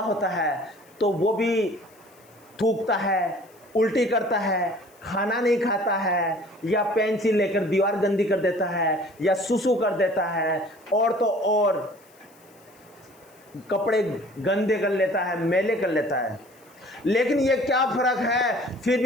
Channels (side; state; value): left; noise; hiss, 29 dB below the sound